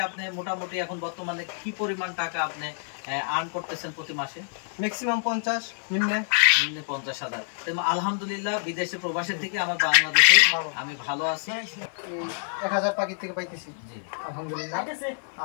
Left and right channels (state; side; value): silent; right; digital silence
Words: আপনি মোটামুটি এখন বর্তমানে কি পরিমাণ টাকা আপনি আর্ন করতেছেন প্রতি মাসে? ম্যাক্সিমাম 50, নিম্নে 50,000। আলহামদুলিল্লাহ বিদেশে প্রবাসের থেকে আমার বাংলাদেশে আমি ভালো আছি। 1000 পাখি থেকে পাইতেছি। জি আলহামদুলিল্লাহ।